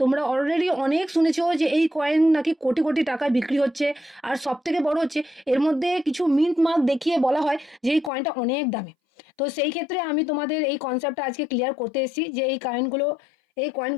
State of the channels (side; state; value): right; drops out; at 8.1 s